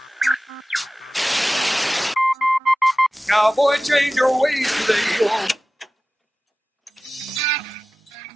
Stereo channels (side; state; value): both; normal; correlation 0.96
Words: Cowboy, change your ways today. Oh.